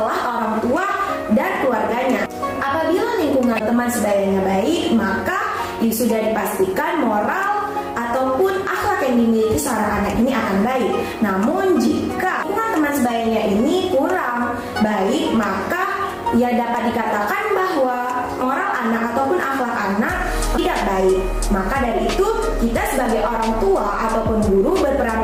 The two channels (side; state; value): both; identical; correlation 1.00